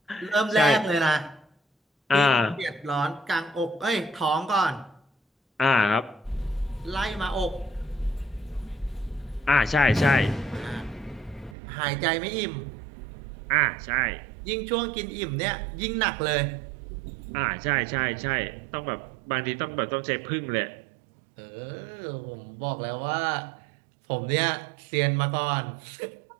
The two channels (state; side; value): drops out; left; at 11.6 s